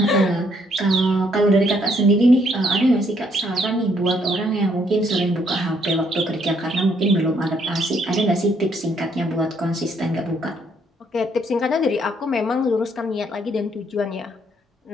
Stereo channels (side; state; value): both; normal; correlation 0.69